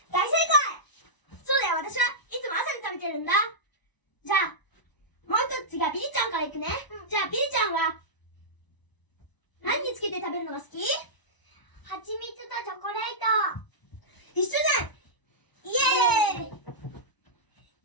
大正解！そうだよ、私はいつも朝に食べてるんだ。じゃあ、もう一つ次はビリちゃんからいくね。じゃあ、ビリちゃんは、何につけて食べるのが好き？蜂蜜とチョコレート。一緒じゃん！イエーイ！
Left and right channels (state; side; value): late; right; 1.0 ms